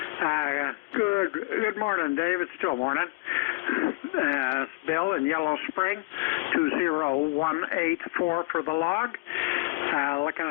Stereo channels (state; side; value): quieter; right; 25.8 dB